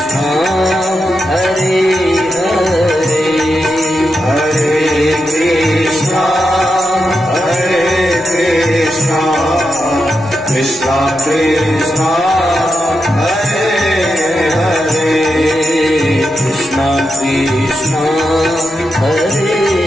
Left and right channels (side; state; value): right; noise; hum, 28 dB below the sound